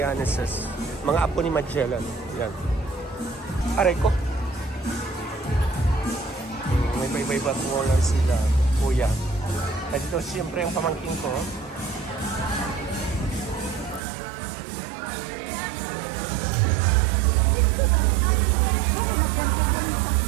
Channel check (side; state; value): left; drops out; at 14.0 s